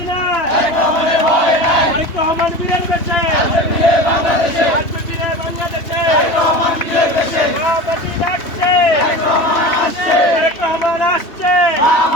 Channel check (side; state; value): right; late; 3.0 ms